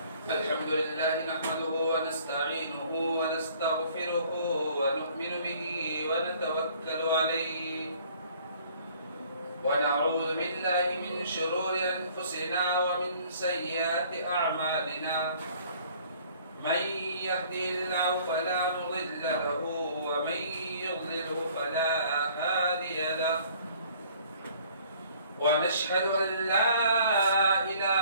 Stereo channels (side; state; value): both; inverted; correlation -0.57